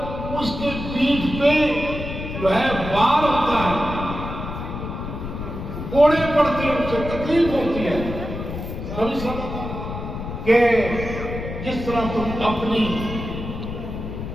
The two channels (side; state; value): left; noise; rumble, 7 dB below the sound